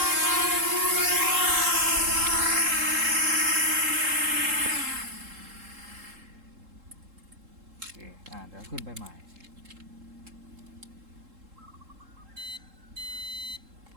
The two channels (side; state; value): left; late; 3.7 ms